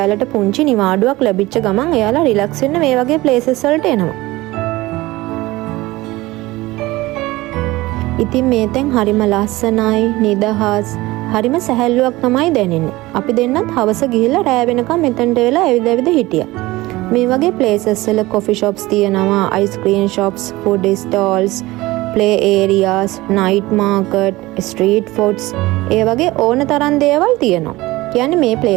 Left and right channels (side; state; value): left; quieter; 19.4 dB